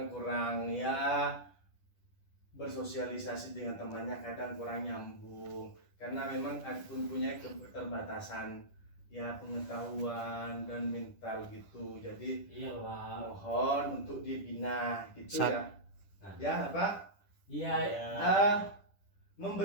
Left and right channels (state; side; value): late; right; 10 ms